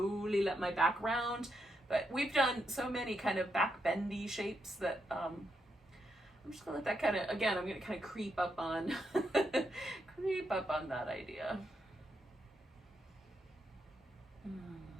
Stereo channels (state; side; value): normal; both; correlation 0.82